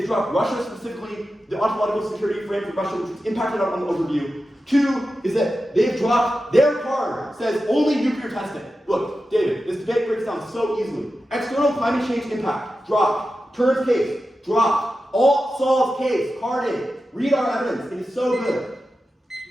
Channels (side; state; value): both; normal; correlation 0.92